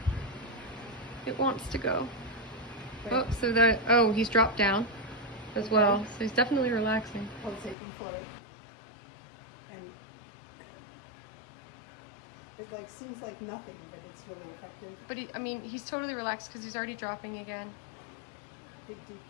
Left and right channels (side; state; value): right; drops out; at 7.8 s